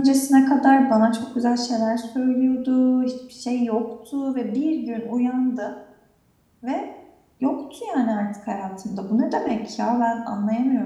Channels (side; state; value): both; identical; correlation 1.00